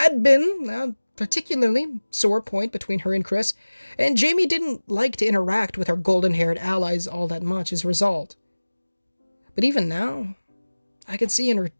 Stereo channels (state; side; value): inverted; both; correlation -1.00